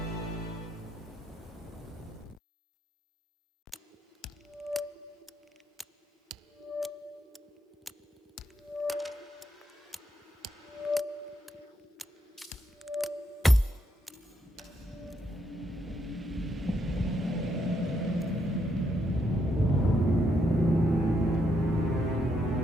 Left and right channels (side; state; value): both; normal; correlation 0.78